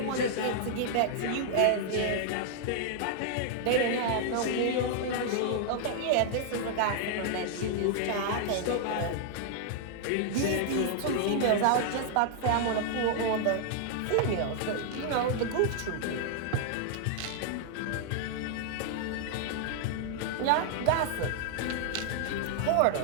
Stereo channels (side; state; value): both; different; correlation -0.01